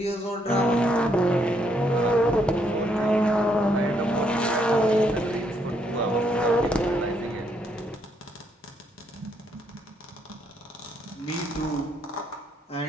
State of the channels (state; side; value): normal; both; correlation 0.73